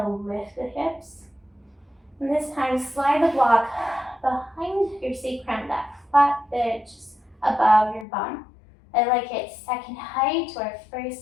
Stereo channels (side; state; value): right; drops out; at 8.1 s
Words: lift the hips. And this time, slide the block behind your sacrum, that flat bit just above your bum. I like it second height or